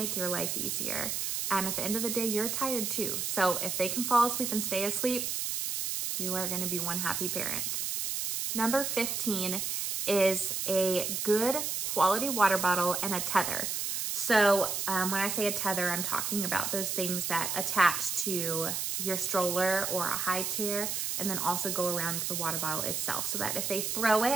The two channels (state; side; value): noise; right; hiss, 1 dB below the sound